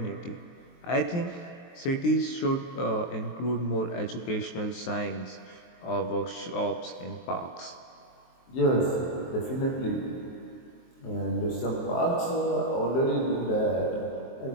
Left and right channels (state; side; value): late; right; 23 ms